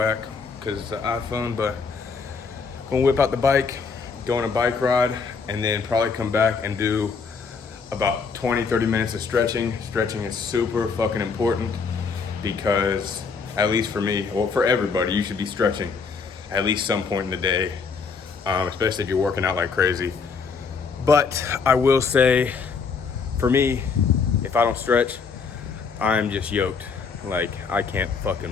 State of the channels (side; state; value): right; quieter; 5.3 dB